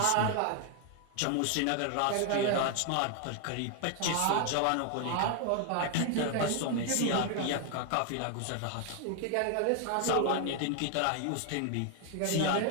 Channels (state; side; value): different; both; correlation 0.00